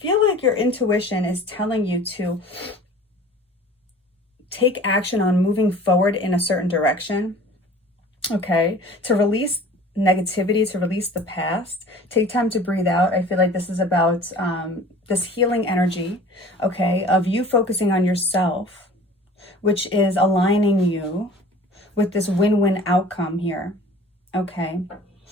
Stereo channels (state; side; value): normal; both; correlation 0.45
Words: like your intuition is telling you to take action on moving forward in a certain direction. Okay, to release negativity, to release the past. Take time to breathe out. I feel like this is about this healing energy, okay, of you focusing on yourself, which is aligning you with this win-win outcome here. Okay,